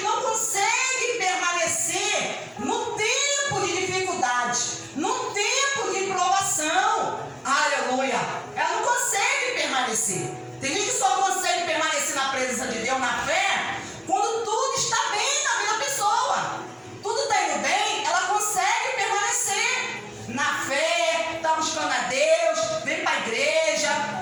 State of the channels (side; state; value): both; identical; correlation 1.00